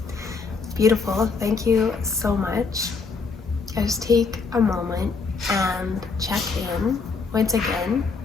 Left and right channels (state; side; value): quieter; right; 4.6 dB